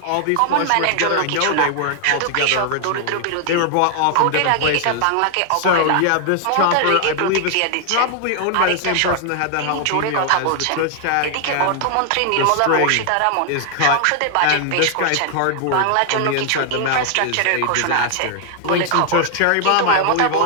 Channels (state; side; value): different; both; correlation 0.00